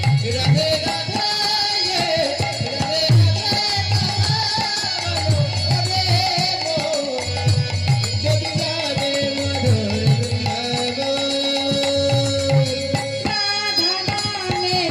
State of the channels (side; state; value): both; identical; correlation 1.00